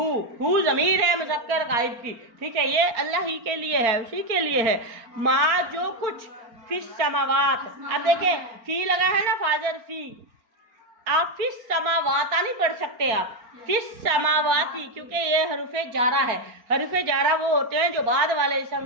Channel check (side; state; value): left; late; 4.4 ms